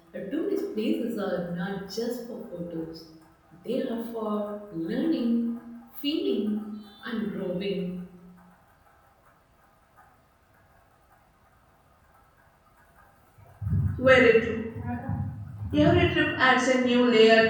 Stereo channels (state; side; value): identical; both; correlation 1.00